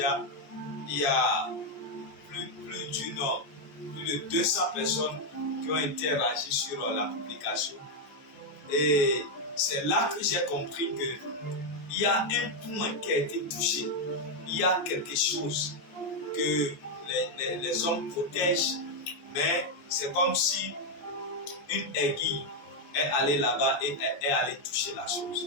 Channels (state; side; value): late; right; 14 ms